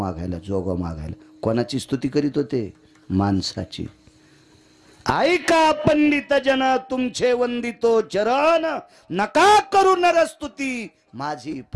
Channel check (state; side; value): identical; both; correlation 1.00